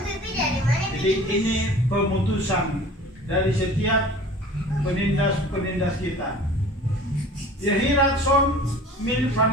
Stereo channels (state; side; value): normal; both; correlation 0.43